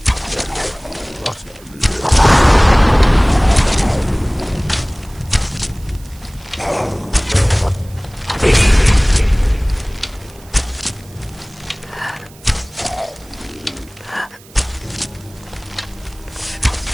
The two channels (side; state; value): right; noise; hiss, 24 dB below the sound